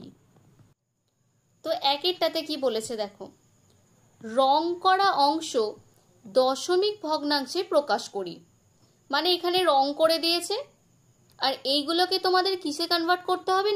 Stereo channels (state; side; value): identical; both; correlation 1.00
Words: তো 1-এরটাতে কি বলেছে দেখো, রং করা অংশ দশমিক ভগ্নাংশে প্রকাশ করি। মানে এখানে রং করে দিয়েছে, আর এইগুলোকে তোমাদের কিসে কনভার্ট করতে হবে